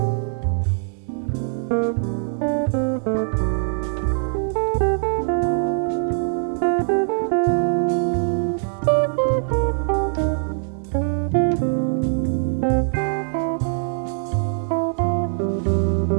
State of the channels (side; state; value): left; silent; 64 dB below the other